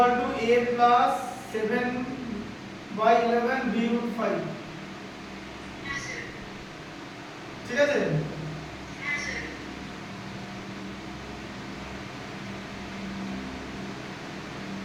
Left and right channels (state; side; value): identical; both; correlation 1.00